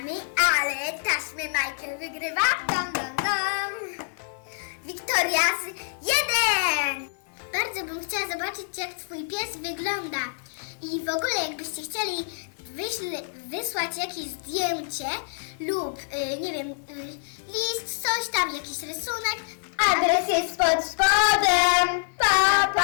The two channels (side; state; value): right; silent; 60 dB below the other